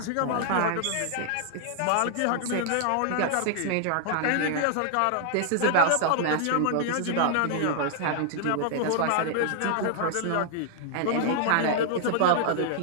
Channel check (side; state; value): both; different; correlation 0.00